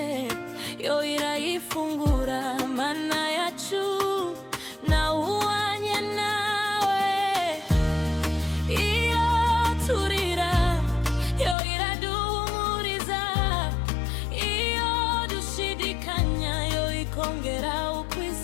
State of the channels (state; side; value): drops out; right; at 11.6 s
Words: yo irayifungura. Mana yacu nawuhanye nawe. Iyo turira, yo iraduhumuriza. Iyo dushidikanya, yo ikongera